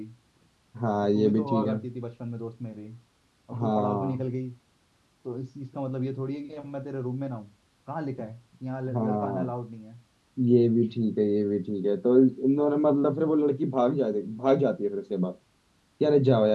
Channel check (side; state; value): both; identical; correlation 1.00